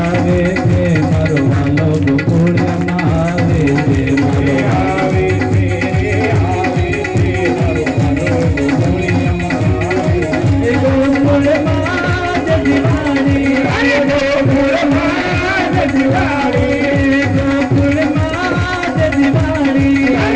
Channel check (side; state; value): both; identical; correlation 1.00